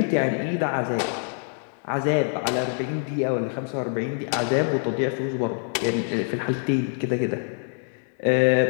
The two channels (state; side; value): silent; right; 56 dB below the other